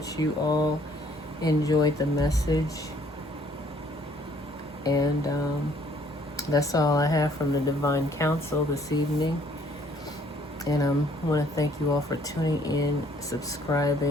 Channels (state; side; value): normal; both; correlation 0.61